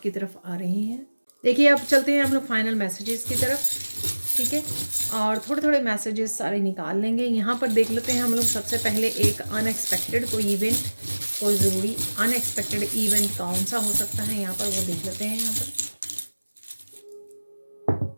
तरफ आ रही हैं। देखिए अब चलते हैं हम लोग फाइनल मैसेजेस की तरफ, ठीक है, और थोड़े थोड़े मैसेजेस सारे निकाल लेंगे। यहाँ पर देख लेते हैं हम लोग सबसे पहले एक अनएक्सपेक्टेड कोई इवेंट, कोई ज़रूरी अनएक्सपेक्टेड इवेंट कौन सा हो सकता है यहाँ पर, वो देख लेते हैं यहाँ पर।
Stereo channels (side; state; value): both; inverted; correlation -1.00